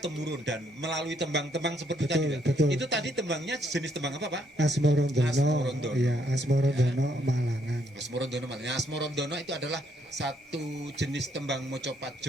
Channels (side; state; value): both; normal; correlation 0.72